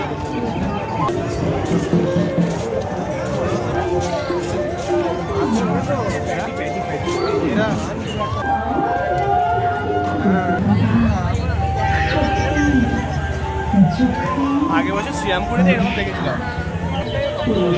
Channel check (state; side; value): identical; both; correlation 1.00